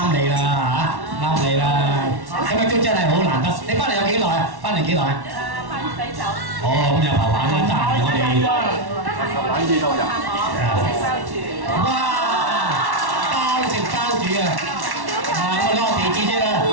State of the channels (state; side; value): late; left; 1.1 ms